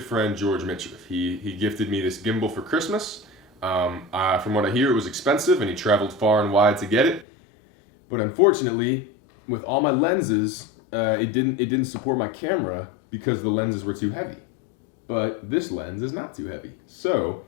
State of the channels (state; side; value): drops out; right; at 7.2 s